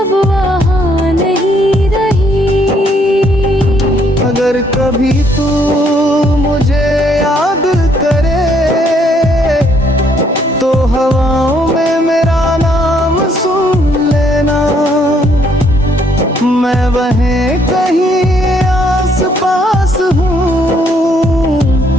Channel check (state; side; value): normal; both; correlation 0.68